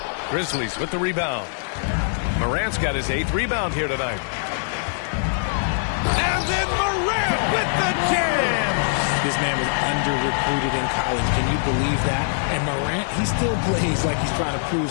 Grizzlies with the rebound. Morant's got his 8th rebound here tonight. And then Morant with the jam. This man was under-recruited in college. Can you believe that? And Morant, he still plays like he's trying to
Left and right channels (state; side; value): silent; right; digital silence